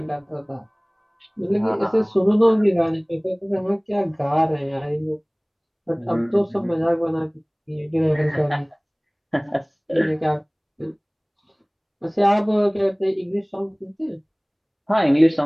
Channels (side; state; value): both; identical; correlation 1.00